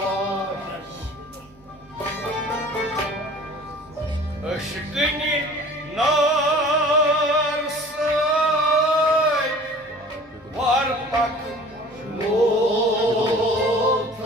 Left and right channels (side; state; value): both; normal; correlation 0.46